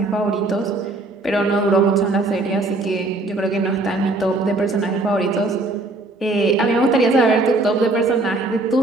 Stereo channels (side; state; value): left; quieter; 3.0 dB